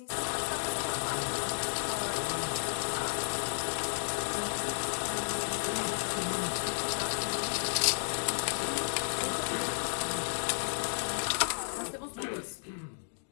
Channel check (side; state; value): right; silent; digital silence